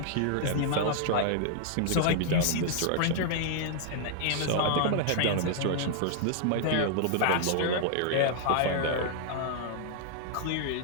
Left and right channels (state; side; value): different; both; correlation -0.01